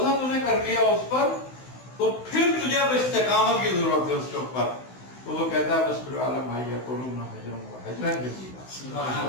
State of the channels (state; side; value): late; right; 16 ms